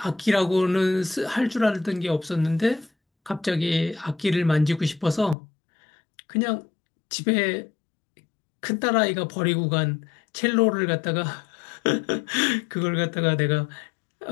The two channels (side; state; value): right; drops out; at 5.4 s